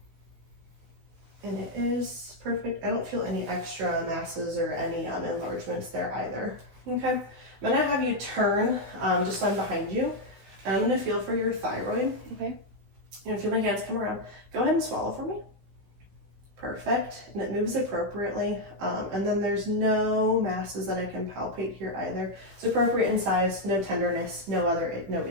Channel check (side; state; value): left; late; 16 ms